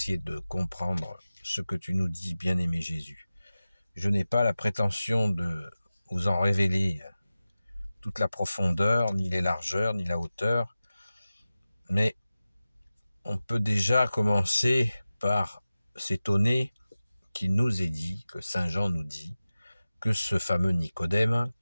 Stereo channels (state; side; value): inverted; both; correlation -0.96